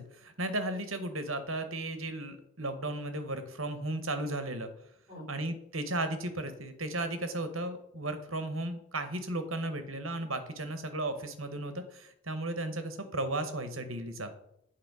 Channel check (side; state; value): both; normal; correlation 0.17